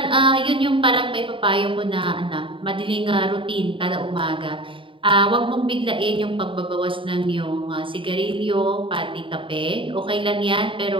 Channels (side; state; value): left; late; 0.25 ms